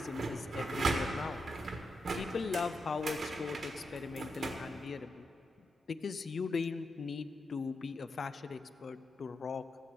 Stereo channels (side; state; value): both; normal; correlation 0.85